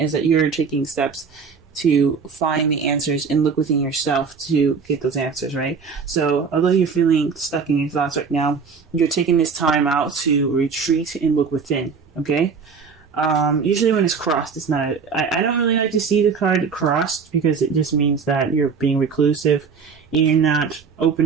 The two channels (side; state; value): left; quieter; 5.6 dB